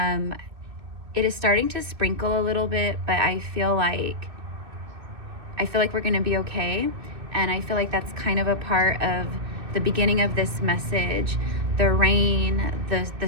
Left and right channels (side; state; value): left; late; 2.6 ms